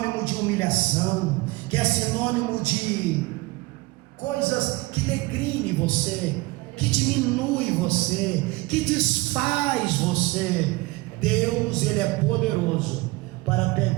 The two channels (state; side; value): quieter; left; 22.3 dB